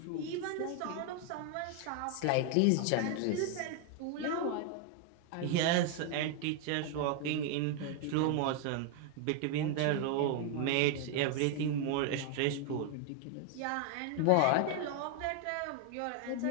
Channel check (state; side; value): different; both; correlation 0.01